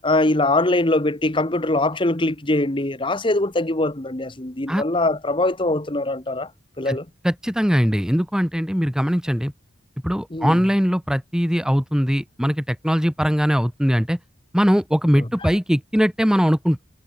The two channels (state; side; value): normal; both; correlation 0.80